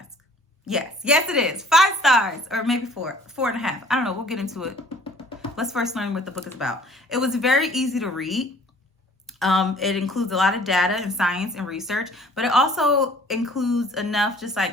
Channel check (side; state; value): both; normal; correlation 0.53